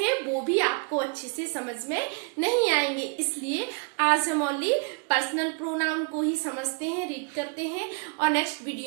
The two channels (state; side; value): quieter; left; 32.8 dB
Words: वो भी आपको अच्छे से समझ में नहीं आएंगे। इसलिए आज हम ओनली पर्सनल प्रोनाउन को ही समझते हैं, रीड करते हैं, और नेक्स्ट